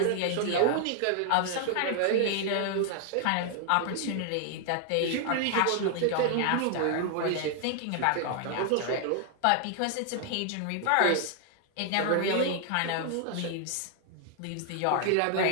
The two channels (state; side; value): different; both; correlation 0.00